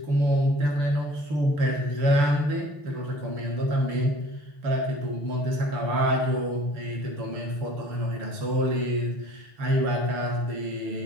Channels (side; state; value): left; late; 6.8 ms